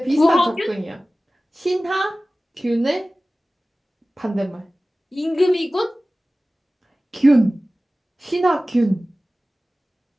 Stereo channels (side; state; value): both; normal; correlation 0.97